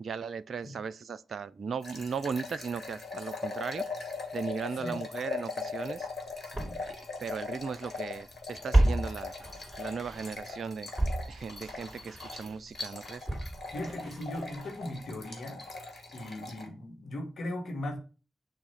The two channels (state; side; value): normal; both; correlation 0.87